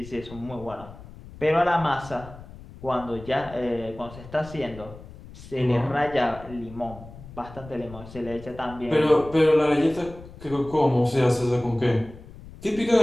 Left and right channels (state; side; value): noise; left; rumble, 17 dB below the sound